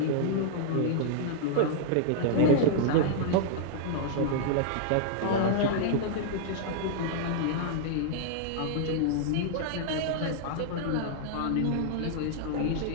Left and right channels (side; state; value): both; different; correlation -0.01